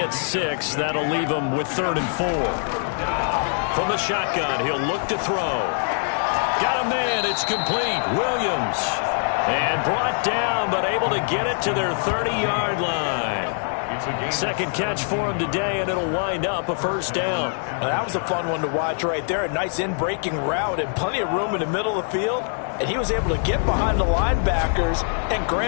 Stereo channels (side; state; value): right; silent; 63 dB below the other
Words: 6. That'll leave them with 3rd and 4. From the shotgun, he'll look to throw. Got a man. It's complete. Williams. And brought down, but able to get it to their 30-yard line. Second catch for him today, and it'll wind up a first down. Well, that was a fun one to watch right there. A nice in-breaking route and plenty of room in the middle of the field. And he was able to get behind the linebackers and